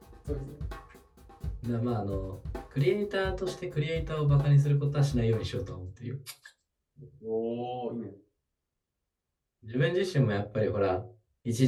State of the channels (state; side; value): identical; both; correlation 1.00